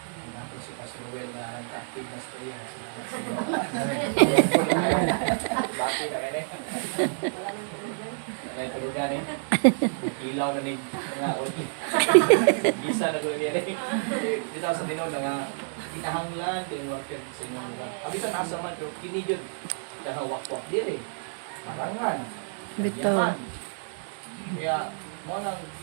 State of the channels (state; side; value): silent; left; digital silence